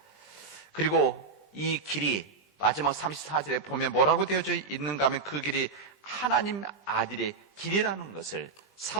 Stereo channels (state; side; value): quieter; left; 4.6 dB